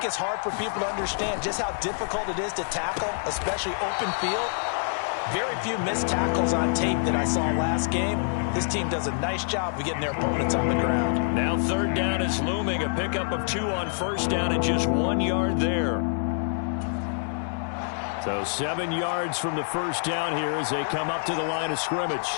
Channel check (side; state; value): right; silent; digital silence